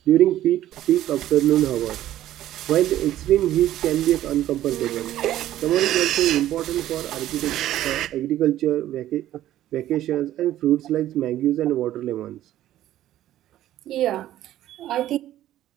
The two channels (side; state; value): left; quieter; 13.3 dB